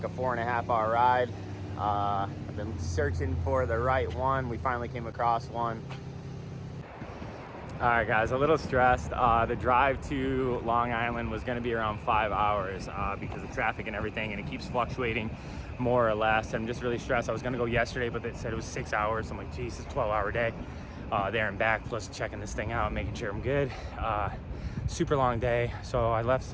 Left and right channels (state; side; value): identical; both; correlation 1.00